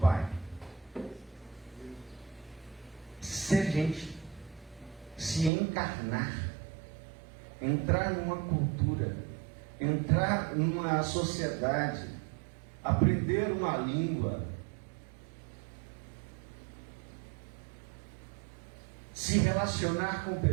Ser gente, se encarnar, entrar numa cultura, entrar numa sociedade, aprender uma língua, se relacionar com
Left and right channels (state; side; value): drops out; left; at 5.5 s